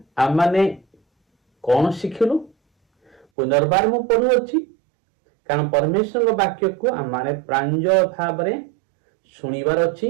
आम माने कौन शिखिलु पुनर्बार मु पढ़ुअछि कारण परमेश्वर वाक्य को आम माने प्रांजल भाव रे सुनिबार अछि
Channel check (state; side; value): drops out; left; at 3.2 s